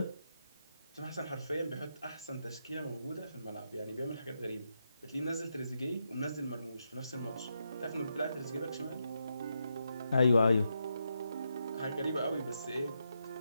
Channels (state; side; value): inverted; both; correlation -0.83